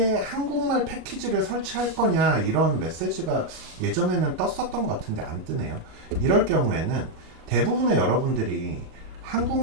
한국말 패키지를 설치할 거냐 이런 메시지가 예전에는 떴었던 것 같은데 안 뜨네요. 이럴 경우에는 대부분의 여러분들이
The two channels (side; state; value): left; late; 38 ms